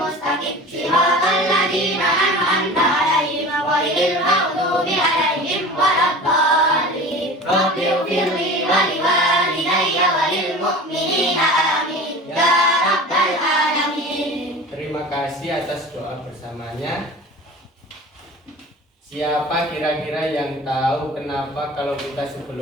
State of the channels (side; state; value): both; normal; correlation 0.37